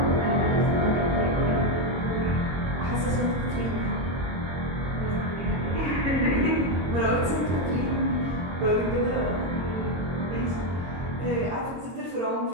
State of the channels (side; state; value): left; late; 22 ms